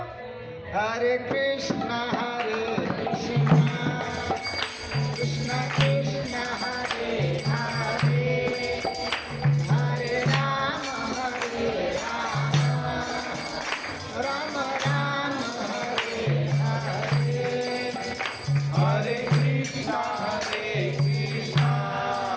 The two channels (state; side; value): identical; both; correlation 1.00